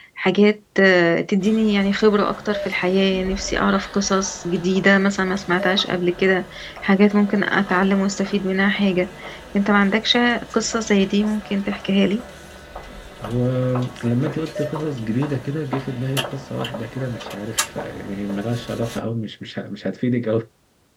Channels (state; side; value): identical; both; correlation 1.00